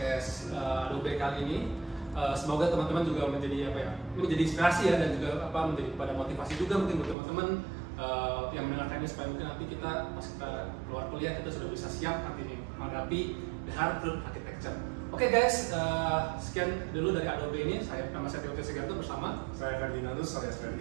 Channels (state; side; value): drops out; left; at 7.2 s